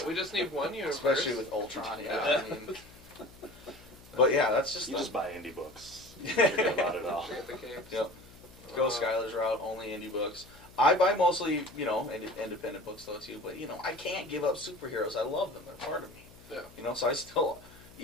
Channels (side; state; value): left; noise; hum, 22 dB below the sound